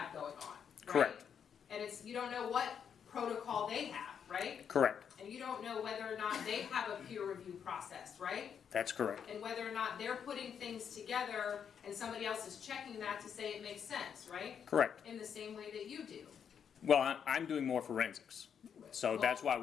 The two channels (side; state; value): right; quieter; 7.7 dB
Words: going on, right? Correct. And you don't know what protocol they have, right? Correct. And you don't know whether or not they have a peer review process, right? That's correct. And whether or not they're putting things together and somebody else is checking that to say it makes sense, right? Correct. In the same way that you do. Well, I'm doing more forensics, so that's why